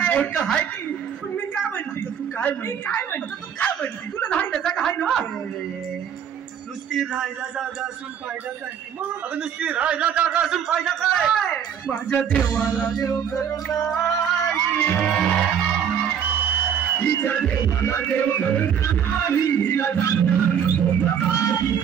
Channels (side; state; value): left; quieter; 8.2 dB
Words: की पण मी काय म्हणते तू काय म्हणते तुला राहायला जागा आहे ना नुसती राहायला जागा असून फायदा काय अगं नुसती राहायला जागा असून फायदा काय माझ्या देवाला देव हिच्या देवाला देव